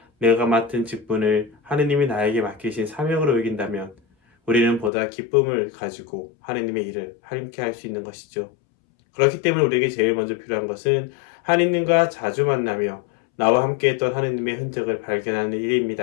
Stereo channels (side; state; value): right; drops out; at 4.9 s